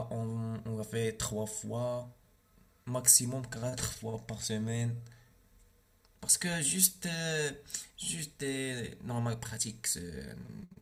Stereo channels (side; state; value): both; identical; correlation 1.00